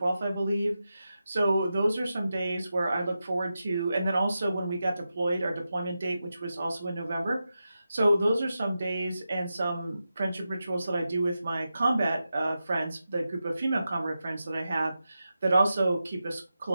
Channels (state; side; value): inverted; both; correlation -0.90